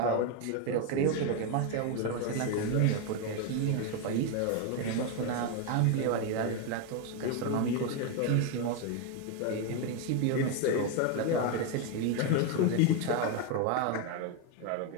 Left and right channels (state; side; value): different; both; correlation 0.02